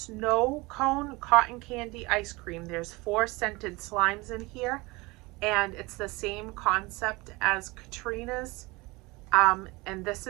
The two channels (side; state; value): left; quieter; 23.7 dB